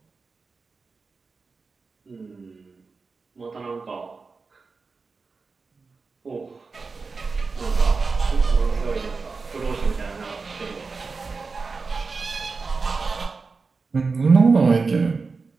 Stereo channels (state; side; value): quieter; left; 4.4 dB